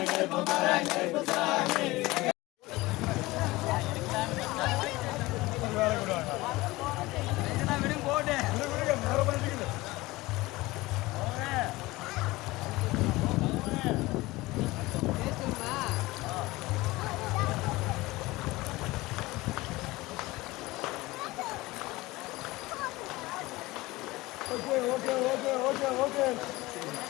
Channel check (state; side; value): quieter; right; 20.2 dB